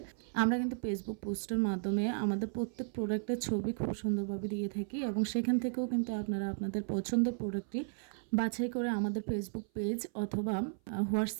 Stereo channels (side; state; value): left; silent; 55 dB below the other